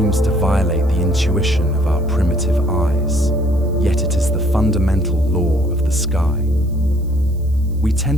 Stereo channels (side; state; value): right; noise; hiss, 29 dB below the sound